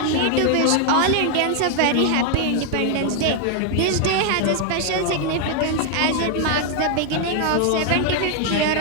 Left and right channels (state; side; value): different; both; correlation 0.00